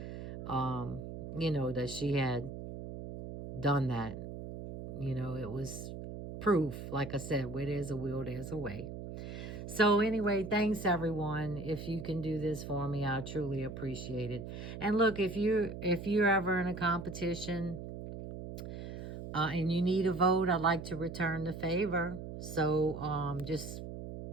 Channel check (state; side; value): noise; right; hum, 9 dB below the sound